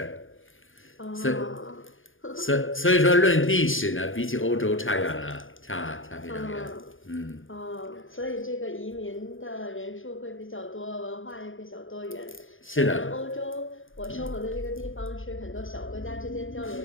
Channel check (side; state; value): right; late; 0.58 ms